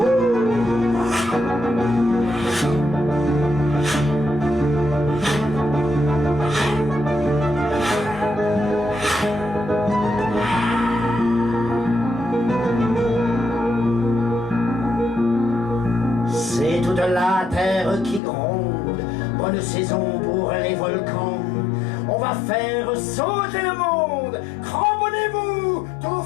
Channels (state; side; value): drops out; right; at 18.2 s